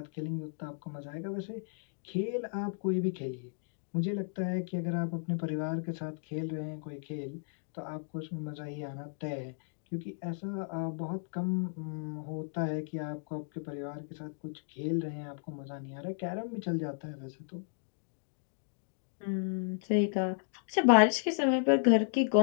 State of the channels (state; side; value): silent; right; digital silence